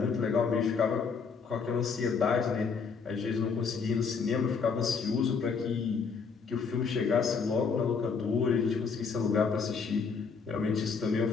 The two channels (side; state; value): right; quieter; 5.5 dB